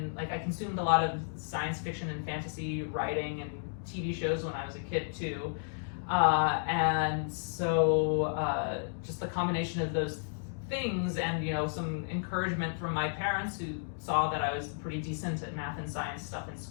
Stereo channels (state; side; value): silent; right; digital silence